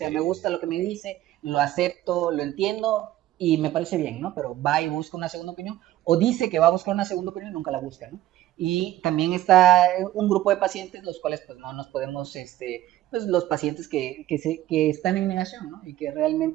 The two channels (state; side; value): quieter; left; 14.4 dB